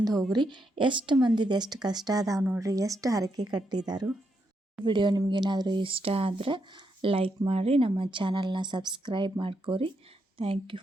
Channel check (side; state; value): both; normal; correlation 0.81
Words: ಹೋಗ್ರಿ. ಎಷ್ಟು ಮಂದಿದು ಎಷ್ಟು ಕಷ್ಟ ಅದಾವೆ ನೋಡ್ರಿ, ಎಷ್ಟು ಹರಕೆ ಕಟ್ಟಿದಾರು. ವಿಡಿಯೋ ನಿಮ್ಗೇನಾದರೂ ಇಷ್ಟ ಆದರೆ ಲೈಕ್ ಮಾಡಿ, ನಮ್ಮ ಚಾನಲ್ನ ಸಬ್ಸ್ಕ್ರೈಬ್ ಮಾಡ್ಕೋರಿ. Thank you